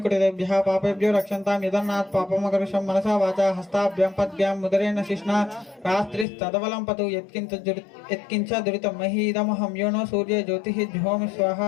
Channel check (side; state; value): right; drops out; at 6.2 s